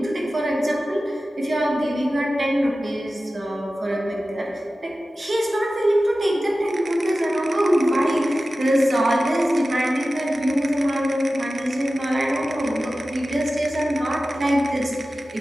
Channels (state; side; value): normal; both; correlation 0.95